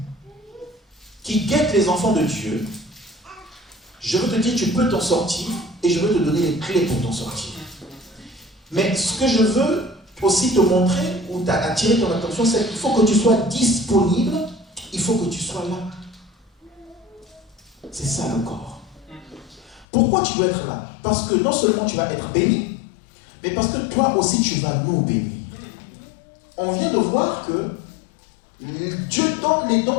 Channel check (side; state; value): right; drops out; at 19.9 s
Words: qui guette les enfants de Dieu, je veux te dire, tu peux t'en sortir, et je veux te donner les clés pour t'en sortir. Mais ce que je veux aussi te montrer, ou attirer ton attention, c'est qu'il faut que tu sois disponible, il faut que tu sois là. C'est ça le corps. Pourquoi tu dois être là? Parce que non seulement tu vas être béni, mais parce que toi aussi tu vas nous bénir. On vient de voir que Dieu donne les dons